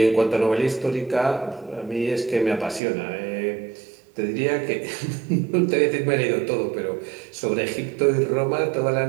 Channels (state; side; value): drops out; left; at 2.8 s